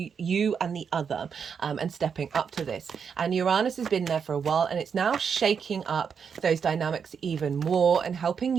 you and the other, and stepping up to this. And Uranus has been there for a while, and it's now shaking up those dynamics even more and helping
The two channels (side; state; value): left; quieter; 6.6 dB